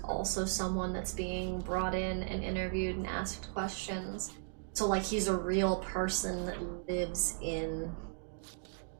also someone that's being brought in and interviewed and asked questions. So, like, he's a real person that lives in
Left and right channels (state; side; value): silent; left; digital silence